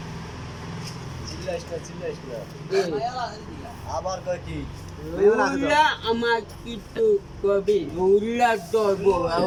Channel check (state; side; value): identical; both; correlation 1.00